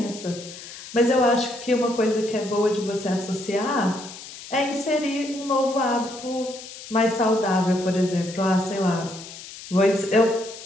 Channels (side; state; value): left; noise; hiss, 14 dB below the sound